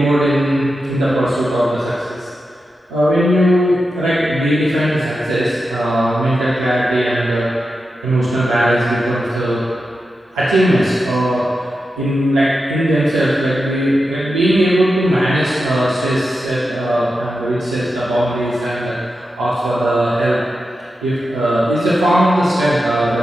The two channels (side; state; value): both; normal; correlation 0.90